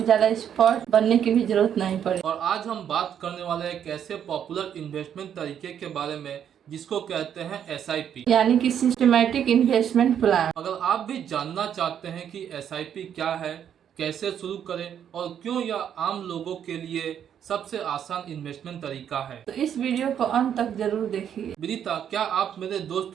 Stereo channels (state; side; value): quieter; left; 9.1 dB